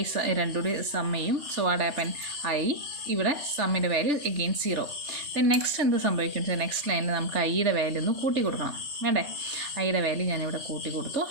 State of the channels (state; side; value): late; left; 3.4 ms